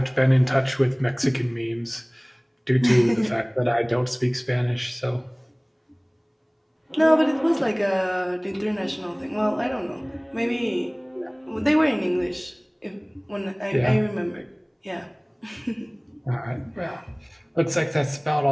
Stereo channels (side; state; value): both; identical; correlation 1.00